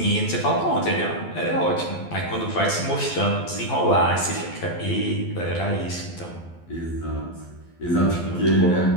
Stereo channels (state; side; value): late; right; 12 ms